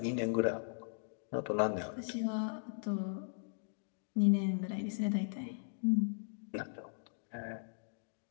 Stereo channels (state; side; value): silent; right; digital silence